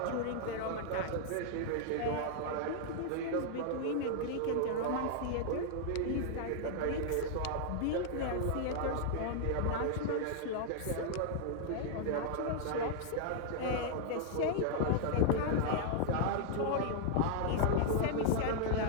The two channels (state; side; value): different; both; correlation -0.01